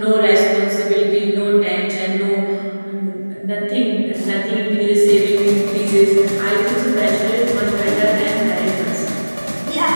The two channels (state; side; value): inverted; both; correlation -1.00